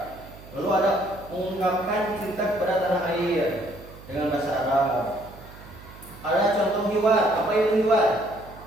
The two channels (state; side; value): noise; right; hum, 18 dB below the sound